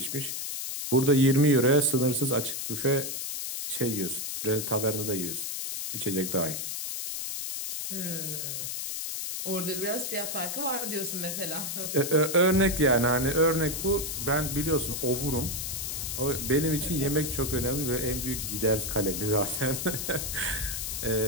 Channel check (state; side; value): noise; left; hiss, 4 dB below the sound